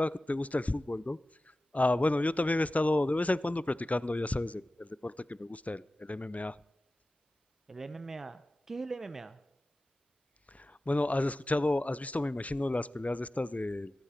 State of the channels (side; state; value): both; normal; correlation 0.95